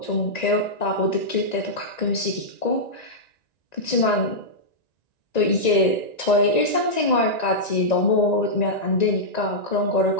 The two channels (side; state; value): right; late; 1.9 ms